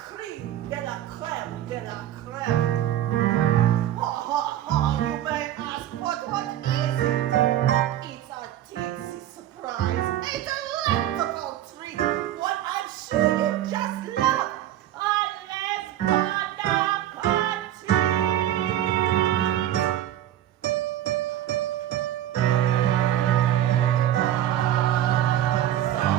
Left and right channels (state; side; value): quieter; left; 12.3 dB